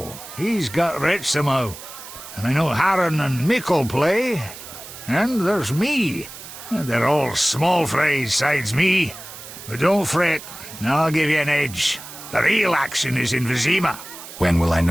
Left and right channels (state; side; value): noise; right; hiss, 14 dB below the sound